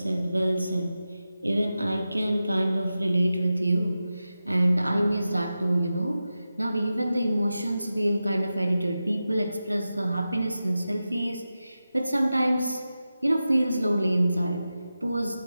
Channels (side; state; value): both; inverted; correlation -0.93